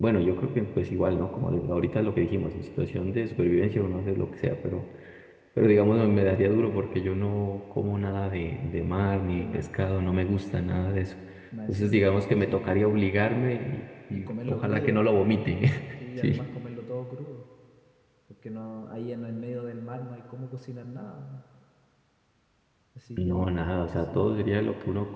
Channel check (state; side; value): identical; both; correlation 1.00